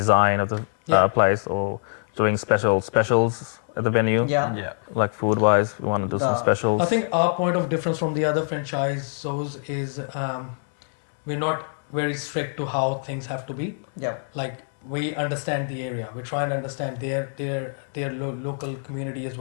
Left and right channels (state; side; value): silent; right; digital silence